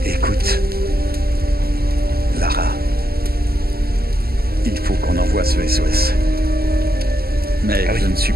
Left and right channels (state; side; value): late; left; 0.45 ms